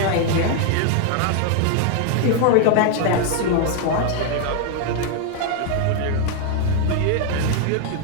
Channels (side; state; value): both; different; correlation 0.00